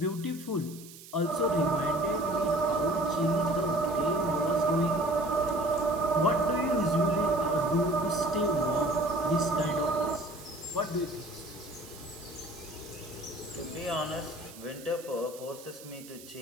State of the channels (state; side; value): noise; right; hiss, 18 dB below the sound